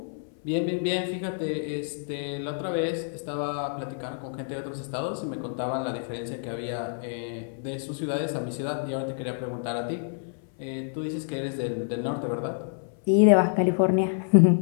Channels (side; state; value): right; silent; 59 dB below the other